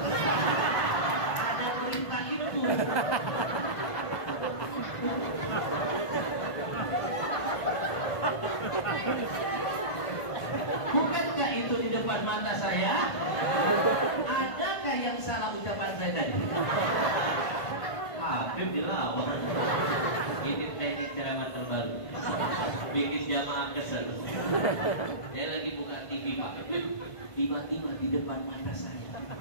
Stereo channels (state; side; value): late; right; 1.5 ms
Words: ada berita itu. Bukankah itu di depan mata saya? Adakah yang salah ucapan saya tadi? Habib dilawan. Ini teknik ceramah terbaru, bikin jamaah kesel. Saya lagi buka TV, Pak. Tiba-tiba di depan mata saya